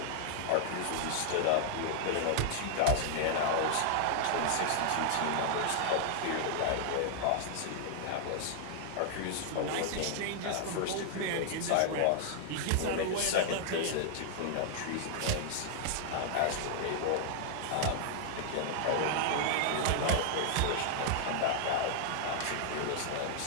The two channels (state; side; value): different; both; correlation -0.01